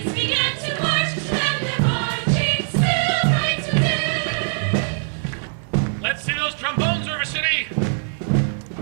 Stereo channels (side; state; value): left; silent; digital silence